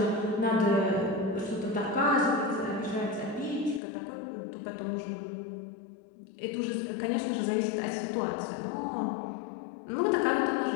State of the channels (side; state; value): right; drops out; at 3.8 s